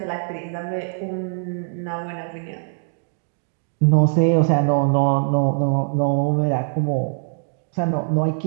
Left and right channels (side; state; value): left; silent; digital silence